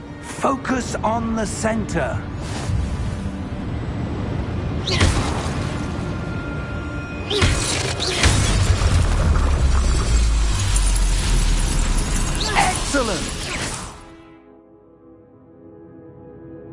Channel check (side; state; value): both; identical; correlation 1.00